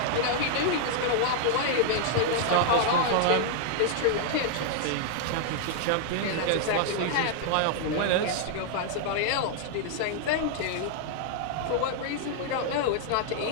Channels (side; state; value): both; different; correlation -0.01